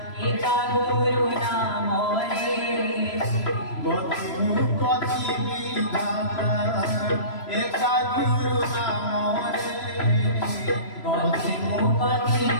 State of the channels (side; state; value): right; late; 3.0 ms